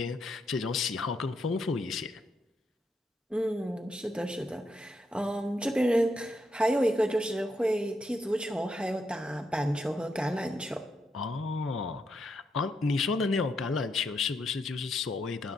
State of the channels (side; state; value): both; normal; correlation 0.80